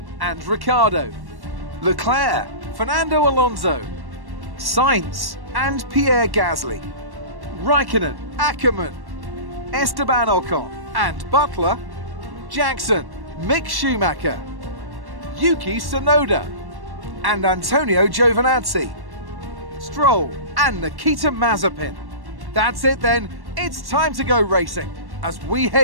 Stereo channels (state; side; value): late; left; 1.1 ms